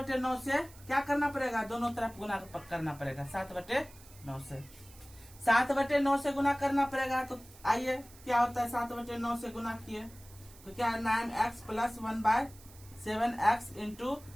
से क्या करना पड़ेगा, दोनों तरफ गुना करना पड़ेगा। 7/9 से 7/9 से गुना करना पड़ेगा। तो आइए क्या होता है 7/9 से गुना किए तो क्या है 9x plus 1/7x into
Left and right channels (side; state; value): right; noise; hiss, 22 dB below the sound